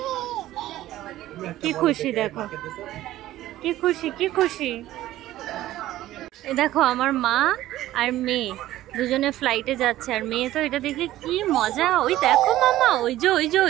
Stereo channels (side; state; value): left; quieter; 14.7 dB